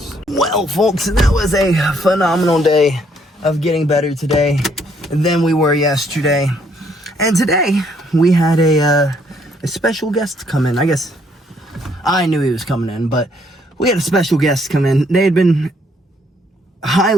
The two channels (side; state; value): both; normal; correlation 0.68